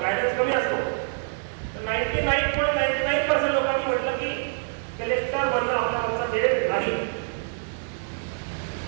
गायडन्स कमी असतो. तर 99.99% लोकांनी म्हटलं की कलेक्टर बनणं आपल्या आमचा ध्येय नाही.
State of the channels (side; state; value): left; silent; digital silence